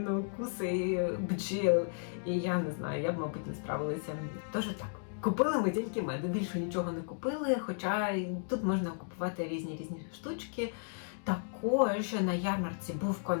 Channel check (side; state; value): right; silent; digital silence